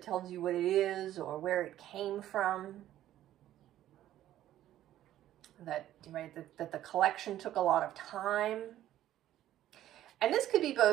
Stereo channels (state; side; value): quieter; left; 12.9 dB